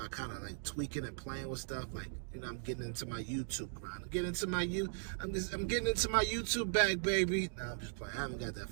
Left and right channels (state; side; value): silent; left; digital silence